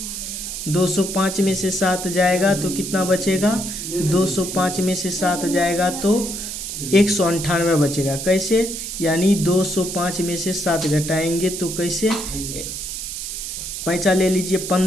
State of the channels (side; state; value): right; noise; hiss, 6 dB below the sound